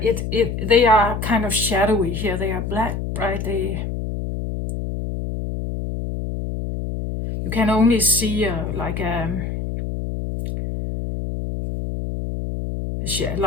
they are kind of shadowy here. They are black, right? You can only see like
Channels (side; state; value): left; noise; hum, 4 dB below the sound